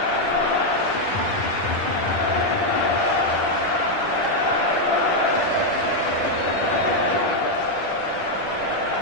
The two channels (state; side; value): late; right; 10 ms